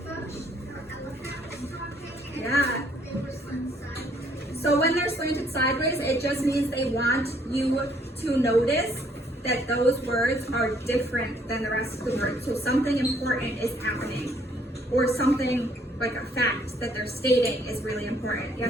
Yeah. So when they're slanted sideways, it just means they want you to notice that those words are different than the rest of the words. So something important is happening, or something like a fact that they're stating is really important.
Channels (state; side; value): normal; both; correlation 0.65